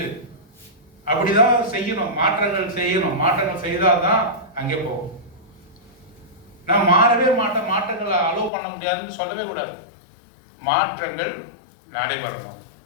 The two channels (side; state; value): right; drops out; at 8.5 s